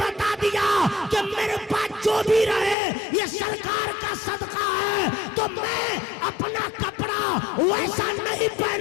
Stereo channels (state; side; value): drops out; right; at 2.8 s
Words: دیا کہ میرے پاس جو بھی رہے یہ سرکار کا صدقہ ہے، تو میں اپنا کپڑا ویسا نہیں